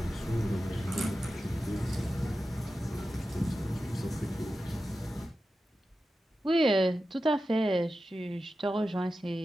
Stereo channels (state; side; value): normal; both; correlation 0.92